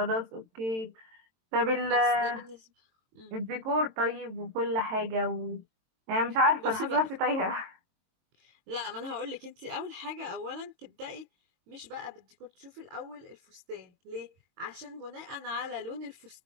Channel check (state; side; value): late; left; 22 ms